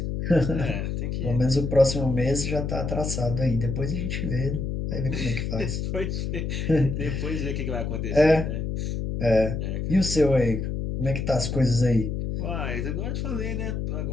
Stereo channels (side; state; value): left; noise; hum, 2 dB below the sound